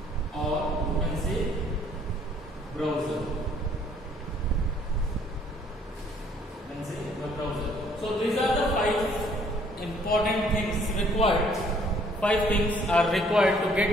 or you can say browser. So these are the 5 important things required. 5 things are required to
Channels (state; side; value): normal; both; correlation 0.61